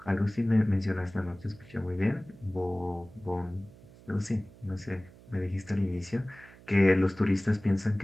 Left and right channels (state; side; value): noise; right; hum, 22 dB below the sound